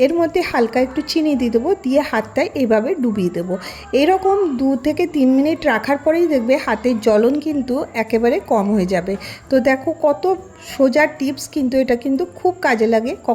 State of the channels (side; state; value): both; identical; correlation 1.00